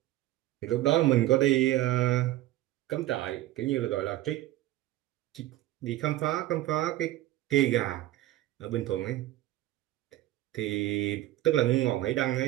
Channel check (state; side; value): quieter; left; 15.3 dB